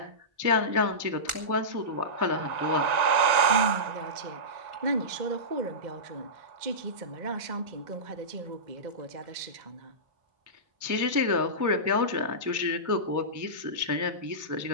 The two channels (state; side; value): late; left; 1.9 ms